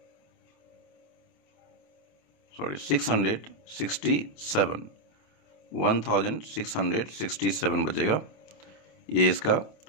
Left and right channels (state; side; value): late; right; 27 ms